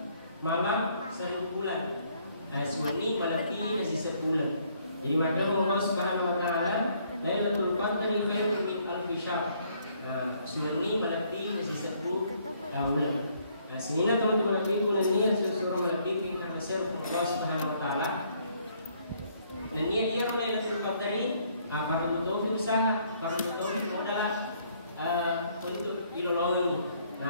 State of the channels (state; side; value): inverted; both; correlation -0.66